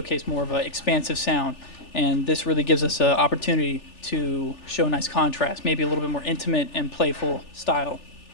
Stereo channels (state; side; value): late; right; 3.4 ms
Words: more of an expansive sound, and this really gives us an opportunity to show a nice contrast, maybe a little bit more intimate and playful style.